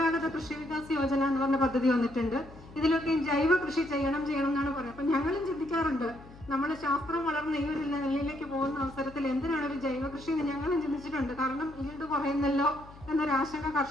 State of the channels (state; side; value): noise; left; hum, 19 dB below the sound